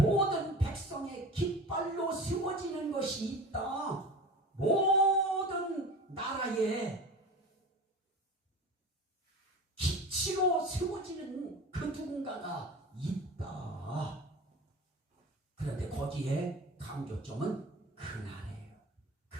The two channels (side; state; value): both; normal; correlation 0.35